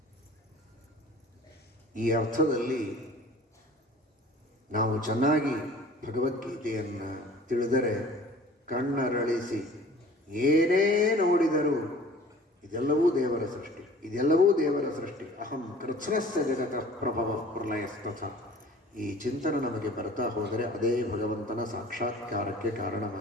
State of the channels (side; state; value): both; normal; correlation 0.47